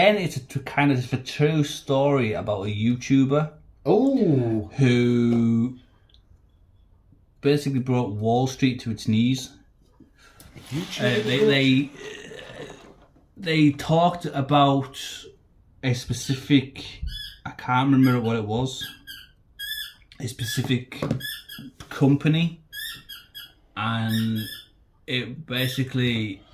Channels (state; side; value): identical; both; correlation 1.00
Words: of a true story about a YouTuber. Oh. Who basically brought Wall Street to its knees. They talked about a specific... I can't remember what it was. A specific company, and it basically